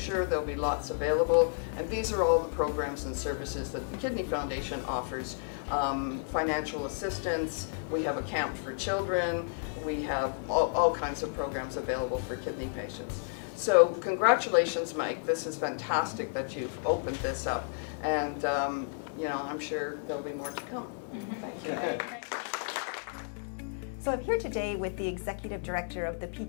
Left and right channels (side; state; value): right; silent; digital silence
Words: There'll be lots available, and these are all the programs and services that the Kidney Foundation offers. Financial assistance, we have a camp for children, we have all kinds of programs available for kidney patients. So congratulations, Mike. This is fantastic that you've opened this up, and I'm sure there'll be more to come. Thank you. So I'm here today with the Executive Director of the